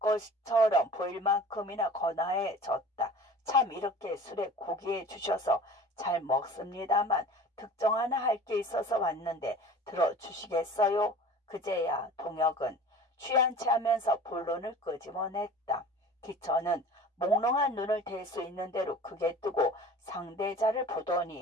보일 만큼이나 거나해졌다. 참 이렇게 술에 고기해 주셔서 잘 먹습니다만 특정 하나 할 게 있어서 왔는데 들어주시겠어요? 그제야 동혁은 취한 채 하면서 본론을 끄집어냈다. 기천은 몽롱한 눈을 댈 수 있는 대로 크게 뜨고 상대자를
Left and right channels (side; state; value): both; normal; correlation 0.42